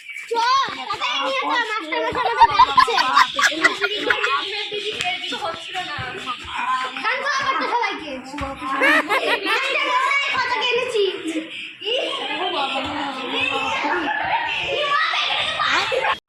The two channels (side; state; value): both; identical; correlation 1.00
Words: চ তাড়াতাড়ি নিয়ে যা মাস্টার মশাই আমাদের ডাকছে। হচ্ছিল না। কান তো করতে সবাইকে। মাস্টার মশাই কত কেনেছি।